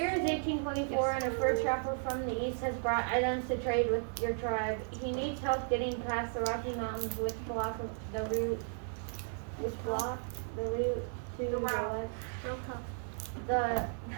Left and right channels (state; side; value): silent; left; 55 dB below the other